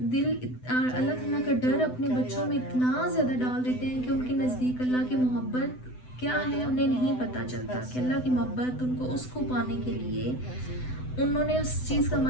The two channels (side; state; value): right; late; 7.9 ms